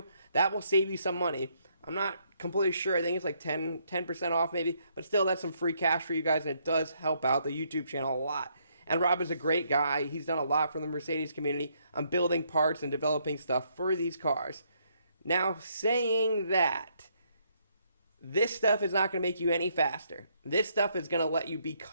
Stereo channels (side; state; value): both; inverted; correlation -0.72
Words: That will save you some money. I'm not completely sure. I think it's like 10% off maybe. But still, that's some free cash for you guys, and it does help out the YouTube channel a lot. And Rob is a great guy. He's done a lot for the Mercedes community on building parts and developing stuff for these cars. Now, saying that, this stuff is not going to make you any faster. This stuff is going to let you